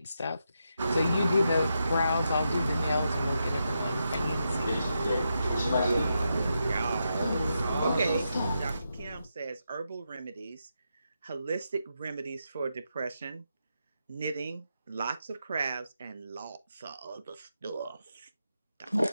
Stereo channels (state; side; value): inverted; both; correlation -0.85